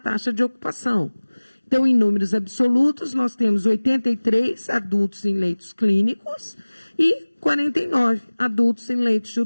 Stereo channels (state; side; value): inverted; both; correlation -1.00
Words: de ocupação. Então, em números absolutos, nós temos 83 adultos em leitos clínicos e 49 adultos em leitos de